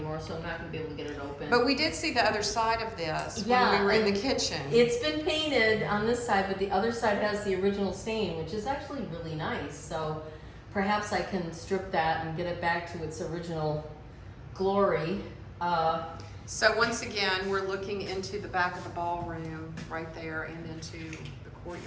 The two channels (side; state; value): both; identical; correlation 1.00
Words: so I'm not gonna be able to get it open. But we did see the other side of this when we were in the kitchen. It's been painted on this side, but the other side has the original stain, which is actually really nice. So perhaps I can strip that and get it back to its original glory. So once again, we're looking into the back of the ballroom right there and into the